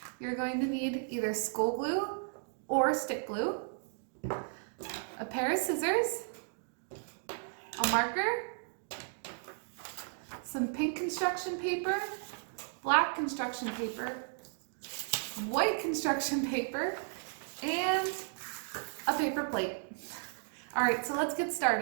you're going to need either school glue or stick glue, a pair of scissors, a marker, some pink construction paper, black construction paper, white construction paper, and a paper plate. All right, so let's get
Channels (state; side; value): silent; left; digital silence